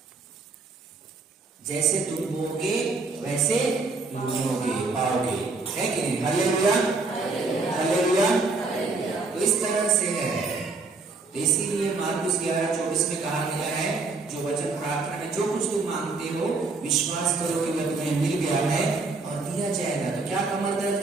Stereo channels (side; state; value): left; quieter; 3.8 dB